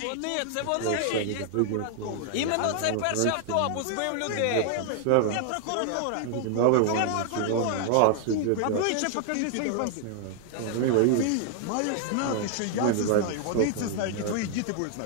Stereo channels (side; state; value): both; different; correlation 0.00